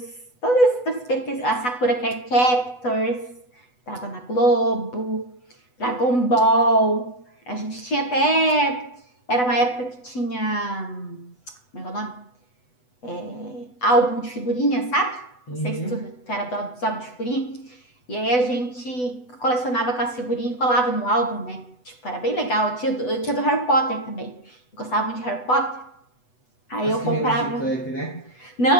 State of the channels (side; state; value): right; late; 8.0 ms